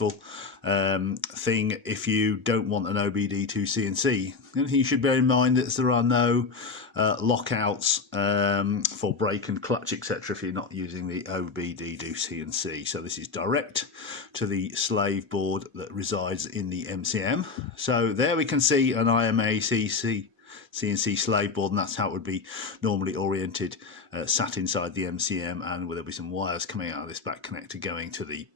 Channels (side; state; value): right; quieter; 4.6 dB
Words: thing if you don't want an OBD2C&C. The only thing you should bear in mind is there are no lockouts for brake and clutch, etc. if you're not using the OBD2C&C. So this is direct to the slave board that resides in the MCM. So there we can see an IMAC&C slave board, and that's how it would be normally oriented, sat inside the MCM, and there'll be some wires coming out of this back connector going to the